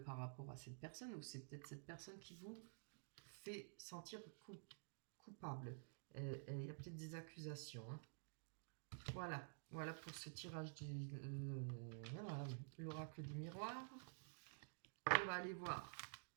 par rapport à cette personne, ou c'est peut-être cette personne qui vous fait sentir coupable. Il y a peut-être des accusations, hein. Voilà pour ce tirage de voilà, l'oracle du miroir. On va aller voir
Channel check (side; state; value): left; silent; digital silence